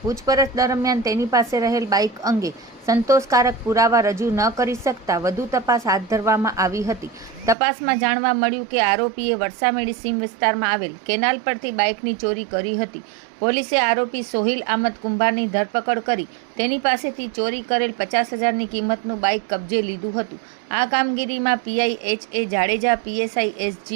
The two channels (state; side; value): drops out; left; at 7.6 s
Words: પૂછપરછ દરમિયાન તેની પાસે રહેલ બાઇક અંગે સંતોષકારક પુરાવા રજૂ ન કરી શકતા વધુ તપાસ હાથ ધરવામાં આવી હતી। તપાસમાં જાણવા મળ્યું કે આરોપીએ વરસામેડી સીમ વિસ્તારમાં આવેલ કેનાલ પરથી બાઇકની ચોરી કરી હતી। પોલીસે આરોપી સોહિલ આમદ કુંભારની ધરપકડ કરી તેની પાસેથી ચોરી કરેલ 50,000ની કિંમતનું બાઇક કબજે લીધું હતું। આ કામગીરીમાં પીઆઈ એચ.એ. જાડેજા, પીએસઆઈ